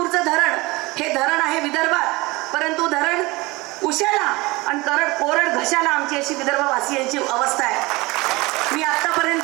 धरण हे धरण आहे विदर्भात, परंतु धरण उशाला आणि कोरड घशाला आमची अशी विदर्भवासियांची अवस्था आहे. मी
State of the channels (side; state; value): left; quieter; 22.7 dB